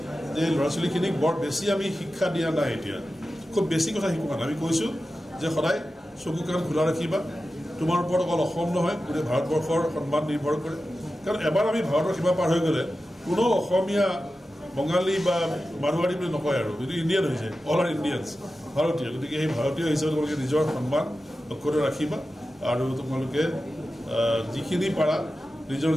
যে ল'ৰা ছোৱালীখিনিক বৰ বেছি আমি শিক্ষা দিয়া নাই এতিয়া খুব বেছি কথা শিকোৱা নাই আমি কৈছোঁ যে সদায় চকু কাণ খোলা ৰাখিবা তোমাৰ ওপৰত অকল অসম নহয় গোটেই ভাৰতবৰ্ষৰ সন্মান নিৰ্ভৰ কৰে কাৰণ এবাৰ আমি ভাৰতৰ সীমা পাৰ হৈ গ'লে কোনো অসমীয়া বঙালী বা মাৰোৱাৰী বুলি নকয় আৰু যদি ইণ্ডিয়ান হৈছে অল আৰ ইণ্ডিয়ানছ ভাৰতীয় গতিকে সেই ভাৰতীয় হিচাপে তোমালোকে নিজৰ সন্মান অক্ষত ৰাখিবা আৰু তোমালোকে যিখিনি পাৰা নিজৰ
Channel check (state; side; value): normal; both; correlation 0.93